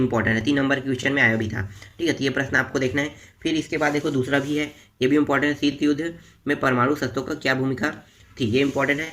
है, 3 नंबर के क्वेश्चन में आया भी था, ठीक है। तो ये प्रश्न आपको देखना है। फिर इसके बाद देखो दूसरा भी है, ये भी इंपॉर्टेंट है, शीत युद्ध में परमाणु शस्त्रों का क्या भूमिका थी, ये इंपॉर्टेंट है।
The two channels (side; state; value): both; identical; correlation 1.00